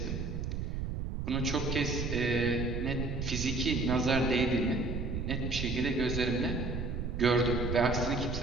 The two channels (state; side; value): noise; right; rumble, 3 dB below the sound